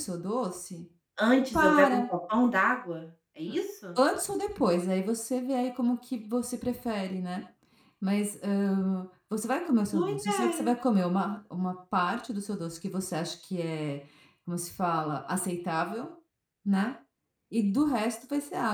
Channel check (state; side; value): identical; both; correlation 1.00